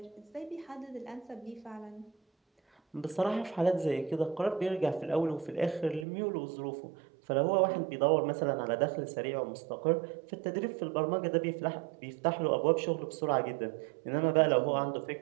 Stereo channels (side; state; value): left; drops out; at 6.1 s